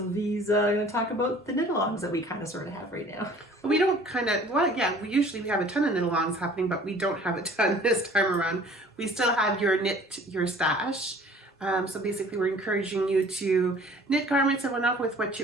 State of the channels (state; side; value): normal; both; correlation 0.50